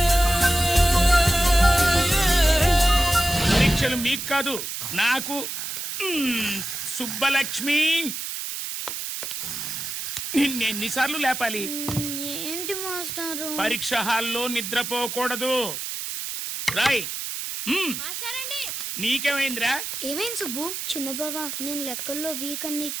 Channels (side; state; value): right; noise; hiss, 5 dB below the sound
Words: పరీక్షలు మీకు కాదు, నాకు. సుబ్బలక్ష్మి, నిన్నెన్నిసార్లు లేపాలి? ఏంటి మాస్టారు? పరీక్ష హాల్లో నిద్రపోకూడదు. రాయ్. నీకేమైందిరా? ఏమైంది సుబ్బు? చిన్న బావా, నేను లెక్కల్లో వీక్ అని నీకు